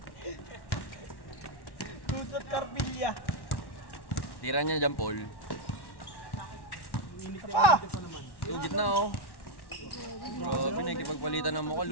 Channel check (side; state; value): right; late; 1.1 ms